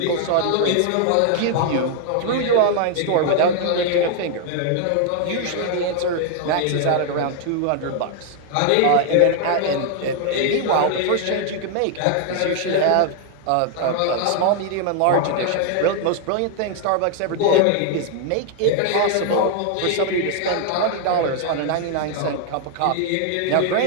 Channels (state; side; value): different; both; correlation 0.00